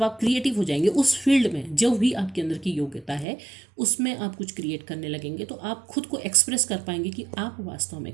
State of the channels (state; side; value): drops out; left; at 3.2 s